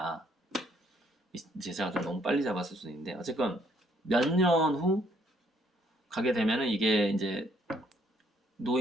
이제 제가 좀 너무 빨리 잡았을 수도 있는데 어쨌건 몇 년 후 가게 되면은 이게 이제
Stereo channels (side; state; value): both; normal; correlation 0.67